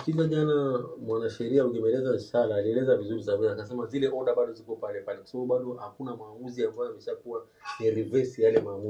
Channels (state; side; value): identical; both; correlation 1.00